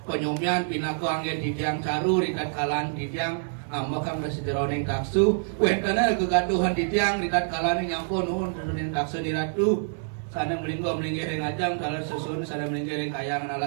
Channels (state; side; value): silent; left; digital silence